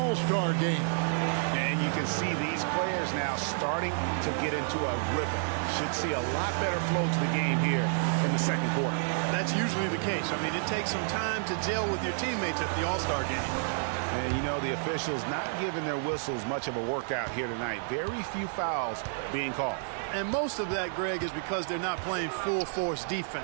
game. And you can see these players now starting to get into a rhythm. Should see a lot better flow to the game here in the second quarter. That's usually the case. I mean, it takes some time to gel with your teammates at the All-Star game. And, you know, the officials not giving their whistles much of a workout here tonight. Very few fouls being called. And most of that, Greg, is because they're not playing full-force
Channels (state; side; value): silent; left; digital silence